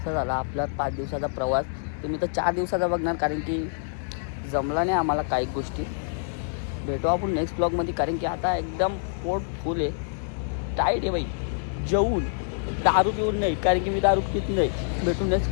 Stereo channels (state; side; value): silent; right; digital silence